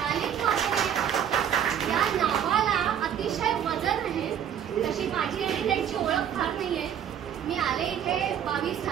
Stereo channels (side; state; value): left; quieter; 9.3 dB